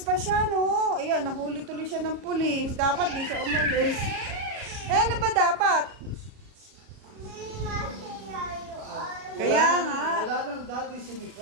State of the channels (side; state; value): left; late; 37 ms